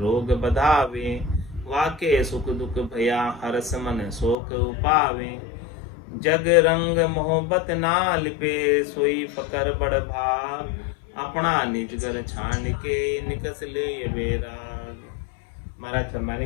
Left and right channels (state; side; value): drops out; right; at 4.4 s